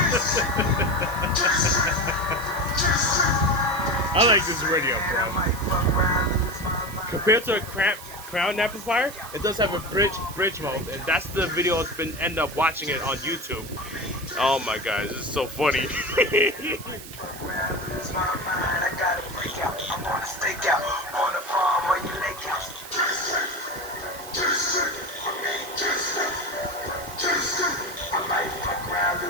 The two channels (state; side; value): noise; right; hiss, 14 dB below the sound